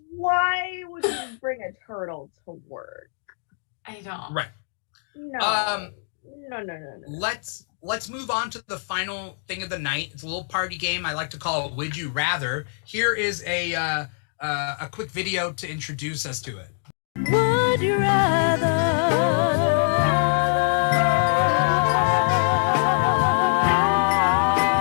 Why would you bring a turtle to work? I don't. Right. No. No. Let's move on to the final thing of the night. It's a little party game I like to call it Would You Rather. Here is a quick video to introduce us to it. Would you rather?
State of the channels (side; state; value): right; silent; digital silence